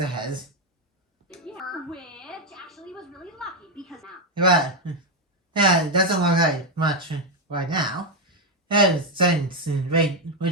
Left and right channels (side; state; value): both; normal; correlation 0.05